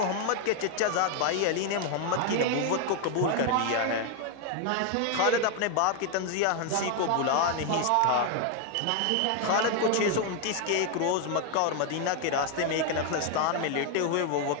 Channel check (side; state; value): both; different; correlation 0.01